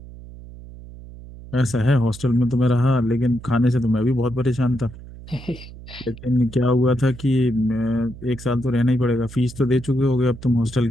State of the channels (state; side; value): noise; right; hum, 16 dB below the sound